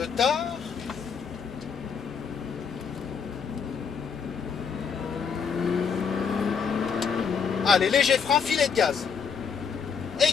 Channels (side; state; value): right; quieter; 6.4 dB